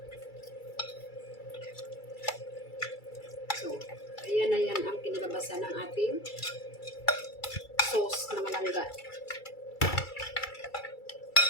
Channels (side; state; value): right; late; 2.3 ms